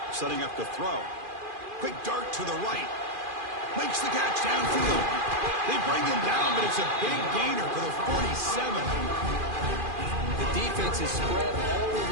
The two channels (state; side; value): late; left; 2.4 ms